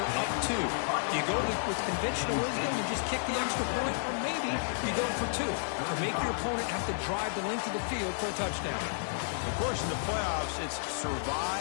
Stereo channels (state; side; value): silent; right; digital silence